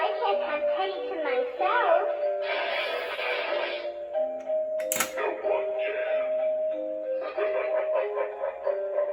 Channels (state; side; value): identical; both; correlation 1.00